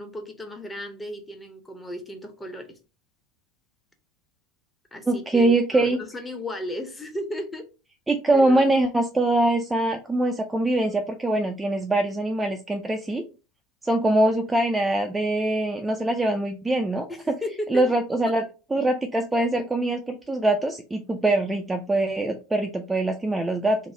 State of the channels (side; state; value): both; normal; correlation 0.78